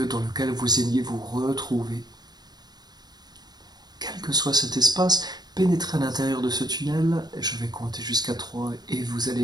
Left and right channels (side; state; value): left; late; 0.20 ms